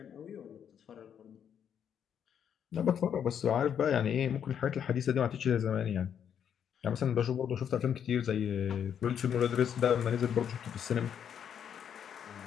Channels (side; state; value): right; quieter; 8.5 dB